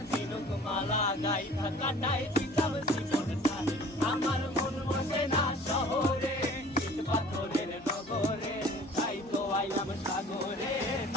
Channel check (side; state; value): both; normal; correlation 0.48